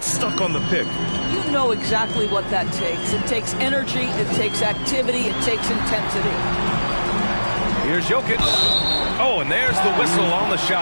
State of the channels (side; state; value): both; inverted; correlation -1.00